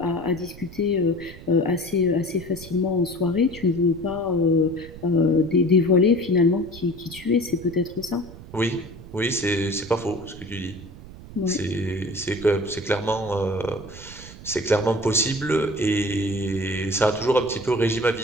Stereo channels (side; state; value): right; noise; rumble, 16 dB below the sound